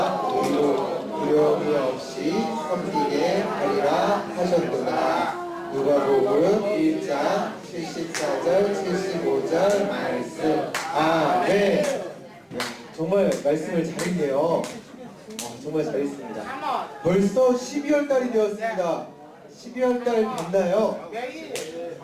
의로 두려움이 없이 섬기게 하리라 하셨구나. 누가복음 1장 74절 75절 말씀. 아멘. 네, 정말 말씀을 잘했네요. 정말 잘했습니다. 벌써 12월 달이 되었습니다. 12월 달 됐나요?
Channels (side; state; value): both; identical; correlation 1.00